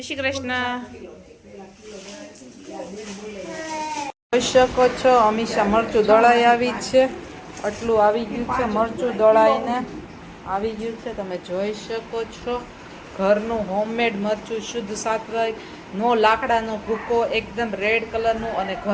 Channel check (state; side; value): identical; both; correlation 1.00